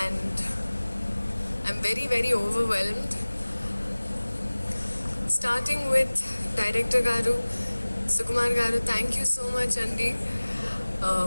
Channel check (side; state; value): both; inverted; correlation -1.00